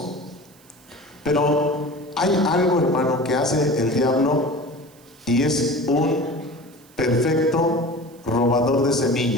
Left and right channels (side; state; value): right; noise; hiss, 28 dB below the sound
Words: pero hay algo, hermano, que hace el diablo, y es un perfecto robador de